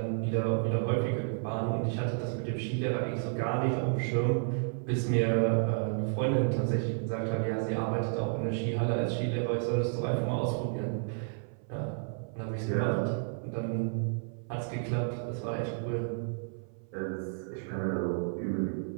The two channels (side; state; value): left; silent; 57 dB below the other